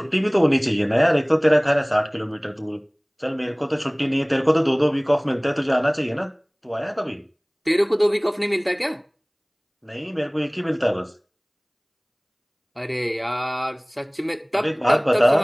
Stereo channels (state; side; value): identical; both; correlation 1.00